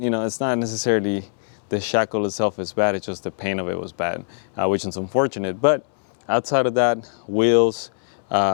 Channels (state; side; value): silent; right; 64 dB below the other